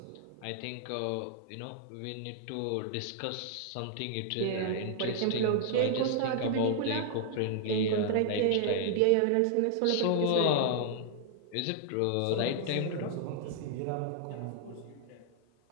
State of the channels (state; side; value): different; both; correlation -0.01